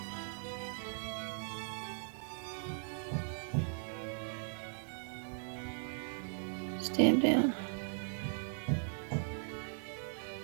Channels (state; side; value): silent; left; 52 dB below the other